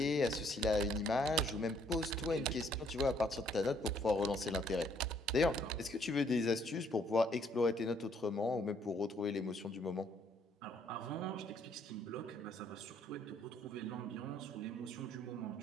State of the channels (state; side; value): normal; both; correlation 0.66